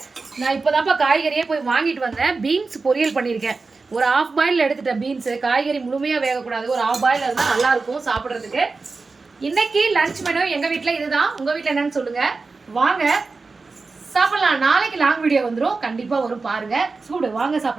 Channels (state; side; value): quieter; left; 4.1 dB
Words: நான் இப்போதான்ப்பா காய்கறியே போய் வாங்கிட்டு வந்தேன். பீன்ஸ் பொரியல் பண்ணியிருக்கேன். ஒரு ஆஃப் பாயில் எடுத்துட்டேன். பீன்ஸ் காய்கறி முழுமையா வேகக்கூடாது. ஒரு ஆஃப் பாயில் இருந்தால் நல்லா இருக்கும் சாப்பிட்றதுக்கு. இன்னைக்கு லஞ்ச் மெனு எங்க வீட்டில் இதுதான். உங்க வீட்டில் என்னன்னு சொல்லுங்க. வாங்க சாப்பிடலாம். நாளைக்கு லாங் வீடியோ வந்துடும். கண்டிப்பா வரும் பாருங்க. சூடு வாங்க